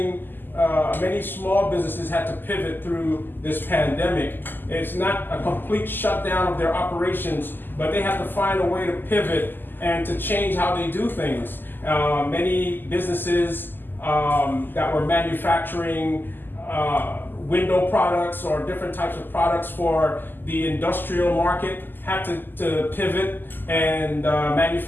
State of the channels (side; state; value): right; late; 0.092 ms